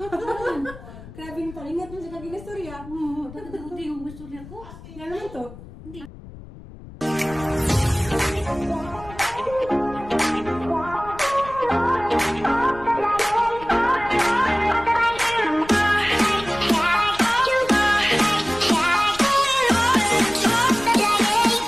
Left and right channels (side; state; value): left; noise; rumble, 17 dB below the sound